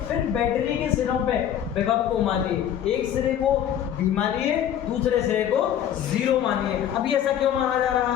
फिर बैटरी के सिरों पे विभव को मानिए। एक सिरे को V मानिए, दूसरे सिरे को 0 मानिए। अभी ऐसा क्यों माना जा रहा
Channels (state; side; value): quieter; right; 10.1 dB